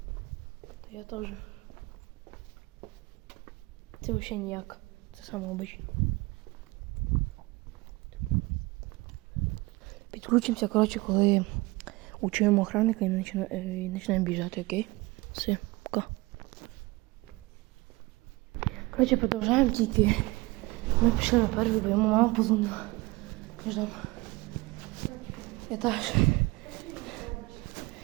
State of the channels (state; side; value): quieter; left; 22.6 dB